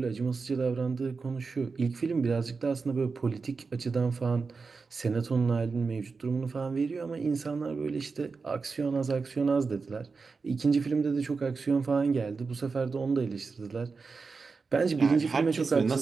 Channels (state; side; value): quieter; left; 4.6 dB